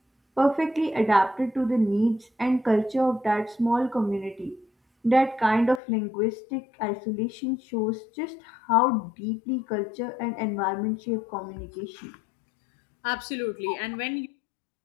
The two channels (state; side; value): drops out; right; at 5.8 s